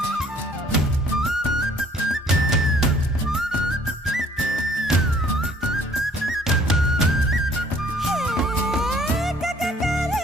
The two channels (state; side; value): normal; both; correlation 0.58